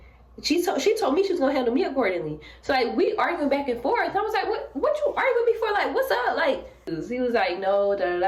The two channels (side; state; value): both; identical; correlation 1.00